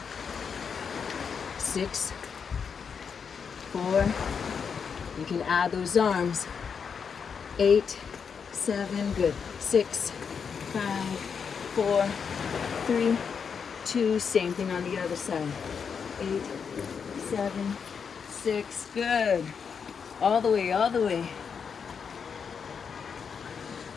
6, 4. You can add those arms. 8, 7, good. 6, 5, 4, 3, 2, same thing on the other side. 8, 7, 6, good. All the way, all the way.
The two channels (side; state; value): right; quieter; 6.4 dB